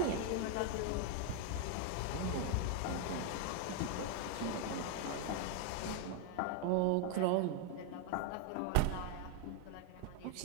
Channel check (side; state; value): both; different; correlation 0.00